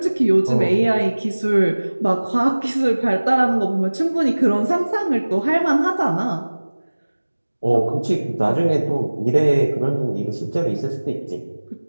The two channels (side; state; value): both; inverted; correlation -1.00